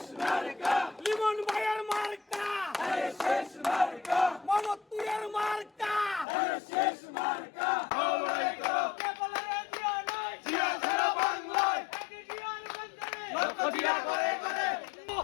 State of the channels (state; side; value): drops out; right; at 6.2 s